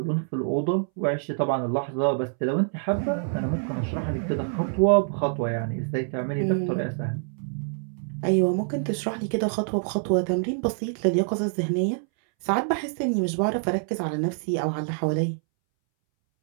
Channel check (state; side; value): silent; left; 61 dB below the other